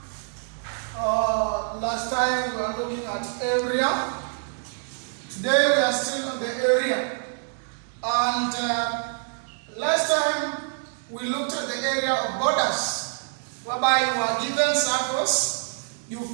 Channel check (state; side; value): silent; left; 61 dB below the other